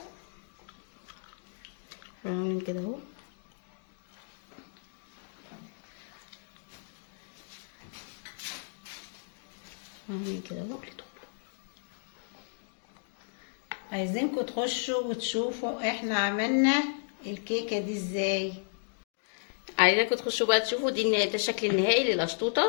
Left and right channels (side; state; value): right; silent; digital silence